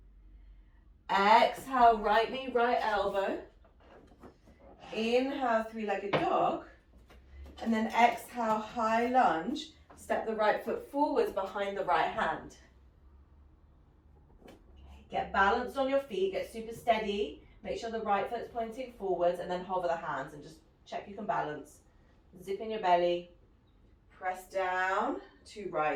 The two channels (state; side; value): identical; both; correlation 1.00